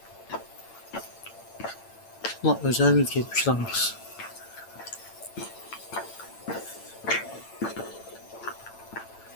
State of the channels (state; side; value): late; right; 8.9 ms